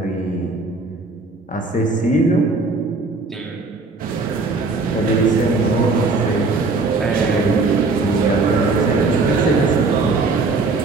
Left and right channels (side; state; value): left; quieter; 3.8 dB